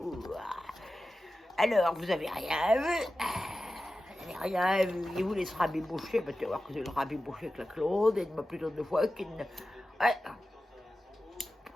Alors, vous avez rien vu. Vous n'avez rien vu. Il vous laisse rabiboucher, mais tu vas voir que c'est le rabiboucher avec la Claude, et il m'a plutôt deux fois qu'il ne... Ouais.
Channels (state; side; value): normal; both; correlation 0.93